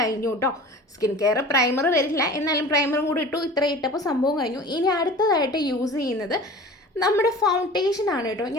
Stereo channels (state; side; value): normal; both; correlation 0.40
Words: കേട്ടോ. സ്കിൻ കെയർ പ്രൈമർ വരില്ല, എന്നാലും പ്രൈമറും കൂടി ഇട്ടു. ഇത്ര ഇട്ടപ്പോൾ സംഭവം കഴിഞ്ഞു. ഇനി അടുത്തതായിട്ട് യൂസ് ചെയ്യുന്നത് നമ്മുടെ ഫൗണ്ടേഷനാണ് കേട്ടോ.